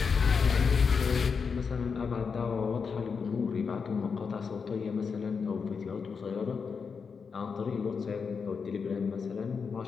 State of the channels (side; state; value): right; quieter; 5.6 dB